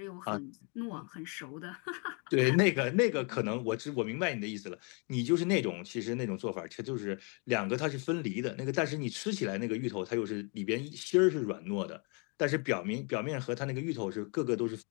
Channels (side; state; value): right; quieter; 36.0 dB